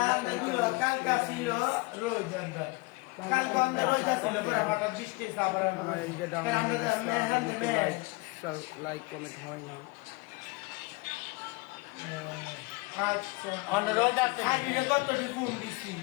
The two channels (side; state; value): right; quieter; 25.1 dB